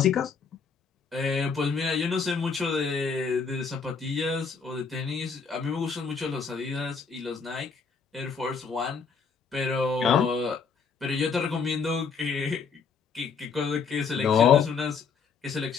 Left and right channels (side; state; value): right; quieter; 5.6 dB